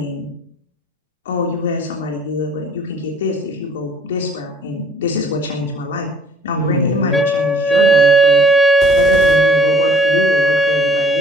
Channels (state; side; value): normal; both; correlation 0.55